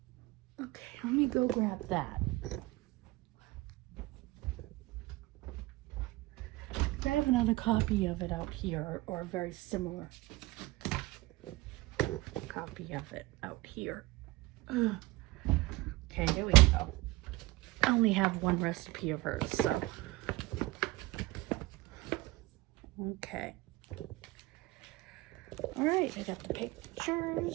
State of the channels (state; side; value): quieter; left; 20.1 dB